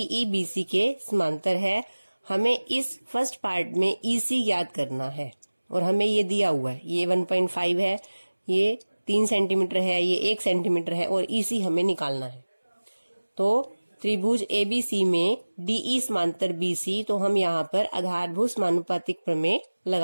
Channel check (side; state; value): both; inverted; correlation -1.00